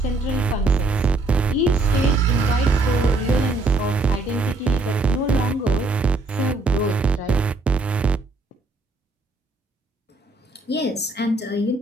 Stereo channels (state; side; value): quieter; left; 3.1 dB